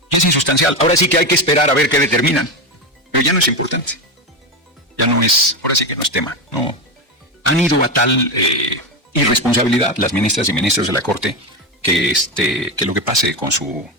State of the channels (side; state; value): both; normal; correlation 0.15